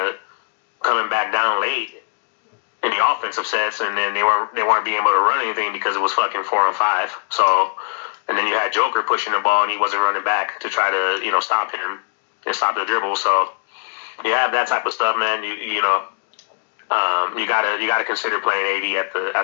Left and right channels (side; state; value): right; silent; 65 dB below the other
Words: of coming back down late in the offensive sets, and then they weren't being able to run anything because it was fucking 4-on-5. So, and then you had Joker pushing the ball, and he wasn't running back to try to stop him and stop the dribble. So you have that type of stuff, man. You gotta consider playing AD